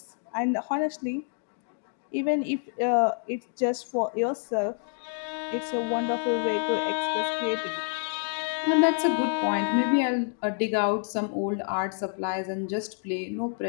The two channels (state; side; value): silent; right; digital silence